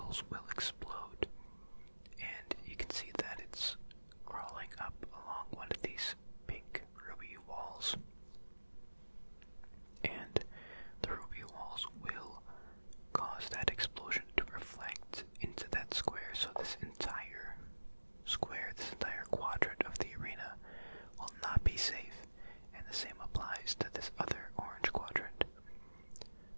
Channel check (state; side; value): inverted; both; correlation -1.00